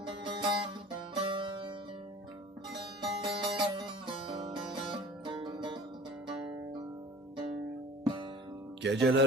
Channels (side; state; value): both; normal; correlation 0.44